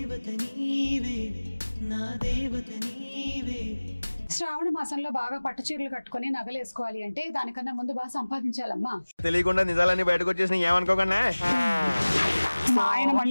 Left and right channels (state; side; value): inverted; both; correlation -1.00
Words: శ్రావణ మాసంలో బాగా పట్టు చీరలు కట్టుకుని నగలు వేసుకోవాలి అంటే దానికన్నా ముందు బాగా సంపాదించాలమ్మా. తెలియకుండా నిజాలన్నీ బయటకు వచ్చేసి ఏమనుకోకుండా మా ఆయన